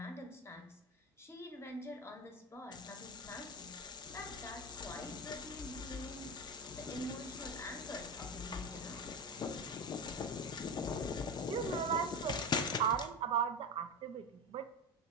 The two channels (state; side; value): normal; both; correlation 0.20